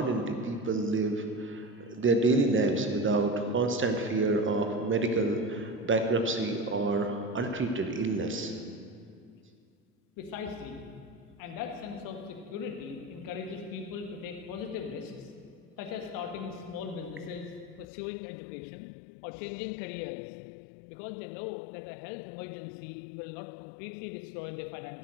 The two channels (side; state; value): right; drops out; at 17.9 s